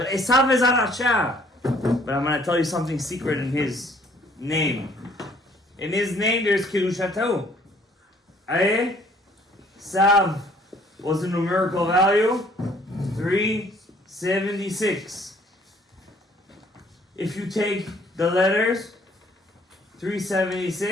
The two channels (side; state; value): both; normal; correlation 0.60